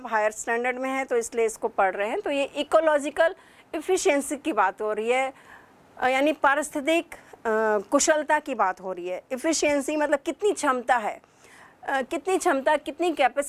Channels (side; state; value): both; identical; correlation 1.00